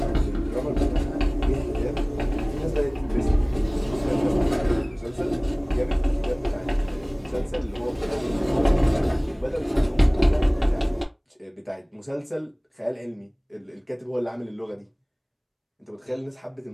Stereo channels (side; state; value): both; identical; correlation 1.00